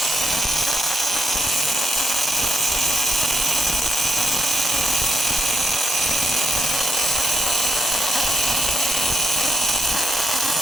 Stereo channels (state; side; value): normal; both; correlation 0.82